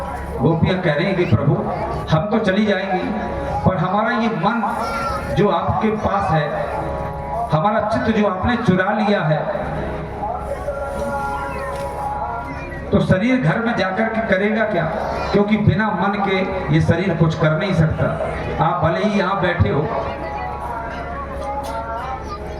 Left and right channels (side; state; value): both; identical; correlation 1.00